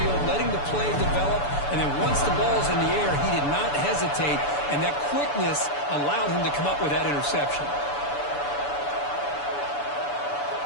letting the play develop, and then once the ball's in the air, he did not hesitate, and that quickness allowed him to come up with that interception.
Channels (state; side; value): late; right; 6.9 ms